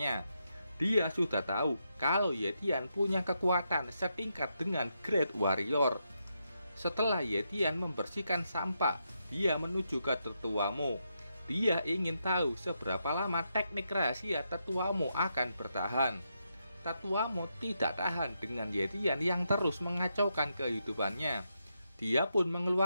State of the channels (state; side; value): inverted; both; correlation -0.82